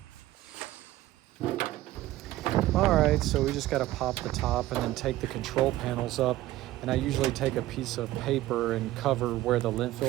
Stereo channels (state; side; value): quieter; left; 15.9 dB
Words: All right, so we just got to pop the top and then take the control panels up. And I usually take a piece of paper and cover where the lint